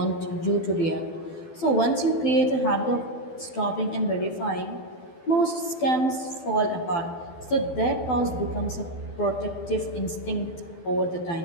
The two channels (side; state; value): right; late; 12 ms